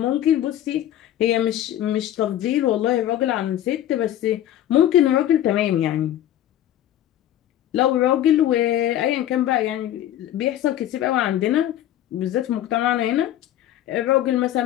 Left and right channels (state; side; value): quieter; right; 12.2 dB